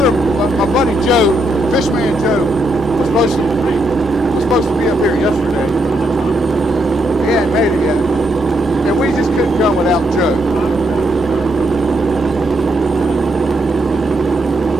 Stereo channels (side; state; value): both; normal; correlation 0.79